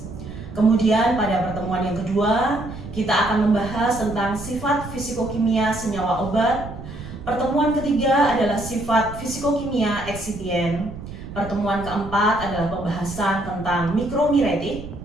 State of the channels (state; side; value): noise; right; rumble, 12 dB below the sound